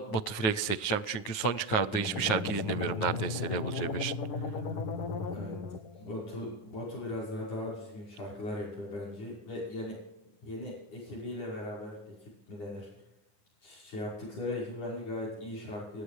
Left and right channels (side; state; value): right; late; 9.3 ms